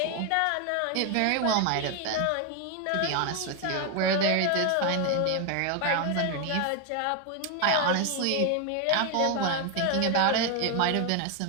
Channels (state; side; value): different; both; correlation 0.01